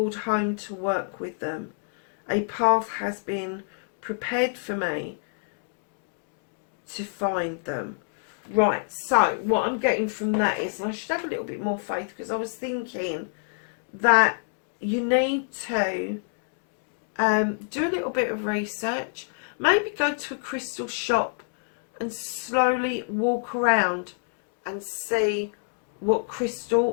home to work with them. A path has been prepared for me to find them. Right, so what I'm getting from that is, and I should have a little bit more faith, because I was thinking that you need to do a little bit of research. Maybe go to a crystal shop and slowly walk around and see what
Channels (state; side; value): silent; right; digital silence